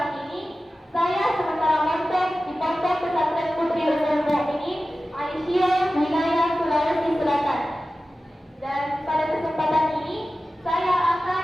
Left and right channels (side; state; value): both; normal; correlation 0.95